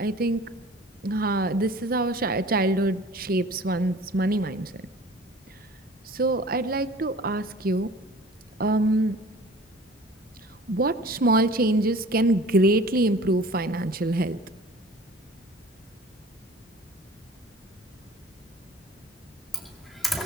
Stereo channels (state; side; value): normal; both; correlation 0.45